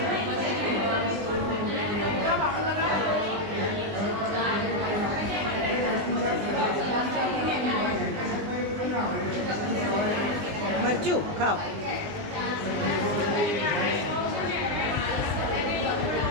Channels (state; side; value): late; left; 19 ms